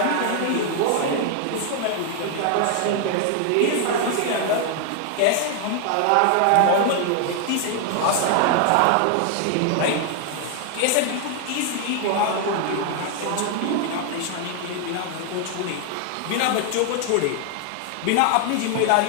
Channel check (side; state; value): both; different; correlation 0.00